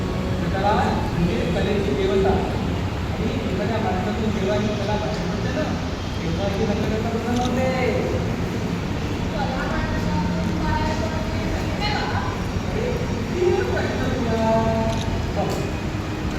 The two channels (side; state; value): both; identical; correlation 1.00